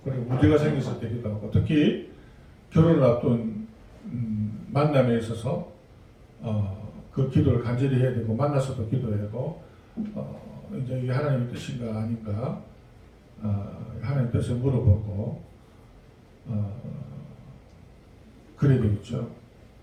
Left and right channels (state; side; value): identical; both; correlation 1.00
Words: 그리고 문제가 생겼을 때 기도하고 특히 결혼을 앞둔 만남에 있어서 그 기도를 간절히 해야 되고 만나서도 기도해야 되고 이제 이게 하나님의 뜻인가 아닌가 하나님의 뜻을 물어보고 그래야 되겠죠.